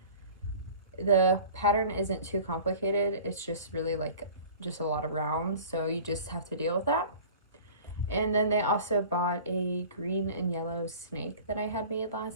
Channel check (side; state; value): both; inverted; correlation -0.43